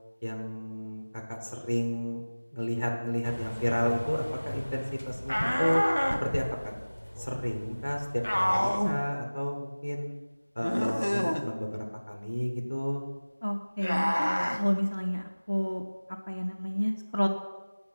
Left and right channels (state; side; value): inverted; both; correlation -1.00